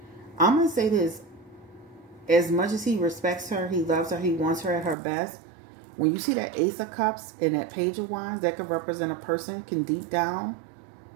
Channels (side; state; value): left; drops out; at 5.0 s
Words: I'm going to say this. As much as he respects her, he loves her, he wants her at her best. When you see that Ace of Cups and that Page of Wands, that could represent a person can deep down